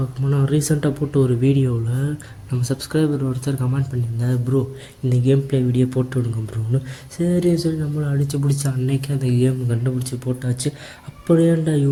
போனால், ரீசெண்டாக போட்ட ஒரு வீடியோவில் நம்ம சப்ஸ்கிரைபர் ஒருத்தர் கமெண்ட் பண்ணியிருந்தார், ப்ரோ இந்த கேம் ப்ளே வீடியோ போட்டு விடுங்க ப்ரோன்னு. சரின்னு சொல்லி நம்மளை அடித்து பிடிச்ச அன்னைக்கு அந்த கேம் கண்டுபிடிச்சி போட்டாச்சு. அப்படியேண்டா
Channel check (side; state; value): both; identical; correlation 1.00